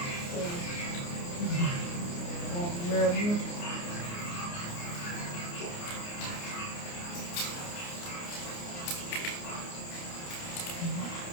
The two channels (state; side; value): late; right; 29 ms